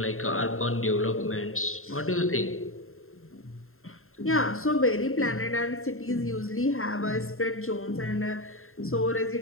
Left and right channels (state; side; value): late; right; 0.61 ms